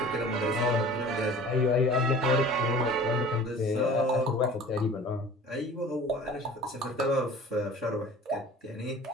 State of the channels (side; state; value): both; normal; correlation 0.44